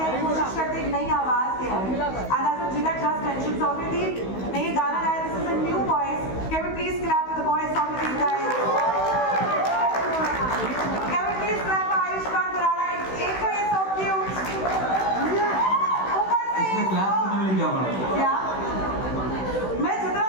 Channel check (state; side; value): late; right; 16 ms